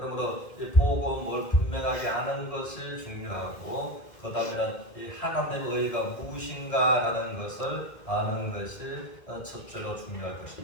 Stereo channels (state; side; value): late; right; 2.0 ms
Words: 이 복음을 분명하게 아는 것이 중요하고 그 다음에는 이 하나님의 의가 무엇인가라는 것을 아는 것이 첫째로 중요할